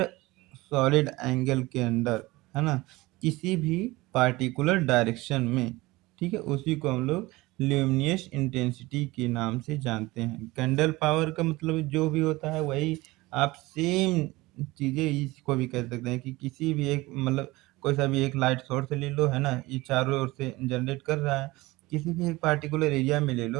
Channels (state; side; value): quieter; left; 20.7 dB